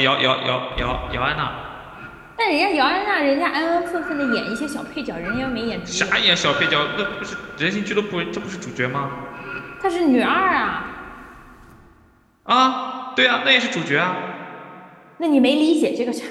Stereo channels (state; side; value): identical; both; correlation 1.00